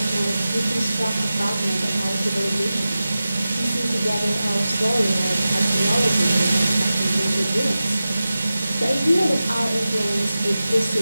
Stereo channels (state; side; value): inverted; both; correlation -0.94